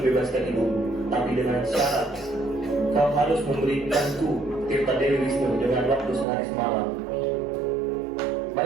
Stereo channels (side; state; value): left; drops out; at 6.2 s